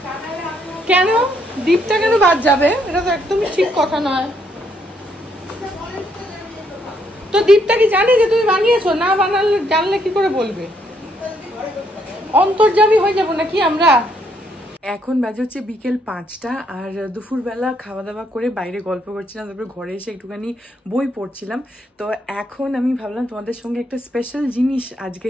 কেন দীপটা কেন বাদ যাবে? এটা তো একদমই ঠিক কথা নয়। তো দীপটা কি জানে যে তুমি বানিয়েছো? না বানালে জানলে কি করে বলবে? অন্তর্যামী হয়ে যাবো নাকি আমরা? এখন বাজে হচ্ছে বিকেল 5টা আর দুপুরবেলা খাওয়া দাওয়া করে বাইরে গল্প করছিলাম, তারপরে ঘরে এসে একটুখানি বই পড়ছিলাম। তো এখন আমি ভাবলাম তোমাদের সঙ্গে একটা স্পেশাল জিনিস আজকে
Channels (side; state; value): both; normal; correlation 0.72